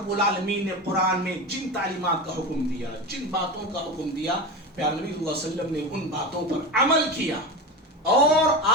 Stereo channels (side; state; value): both; normal; correlation 0.23